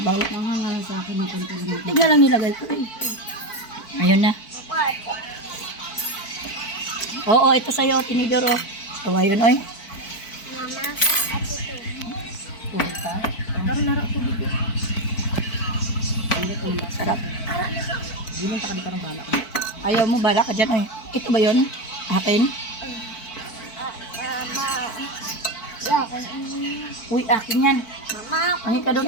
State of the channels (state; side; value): late; right; 4.5 ms